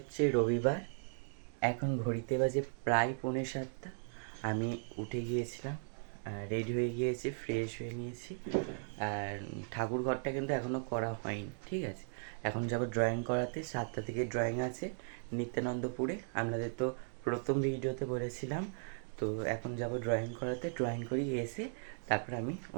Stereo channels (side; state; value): left; silent; digital silence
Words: রবিবার, এখন ঘড়িতে বাজে প্রায় 6:45। আমি উঠে গিয়েছিলাম, রেডি হয়ে গিয়েছি, ফ্রেশ হয়ে নিয়েছি। আর ঠাকুর ঘরটা কিন্তু এখনও করা হয়নি, ঠিক আছে। এখন যাব ড্রয়িং করাতে, 7টা থেকে ড্রয়িং আছে নিত্যানন্দপুরে। আপনাদের তো প্রথম ভিডিওতে বলেছিলাম। তো এখন যাব ড্রয়িং করাতে, ড্রয়িং করিয়ে এসে তারপর আমি